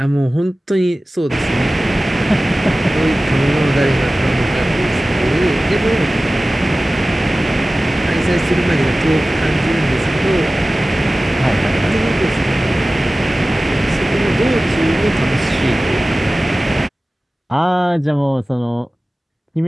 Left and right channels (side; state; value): both; normal; correlation 0.97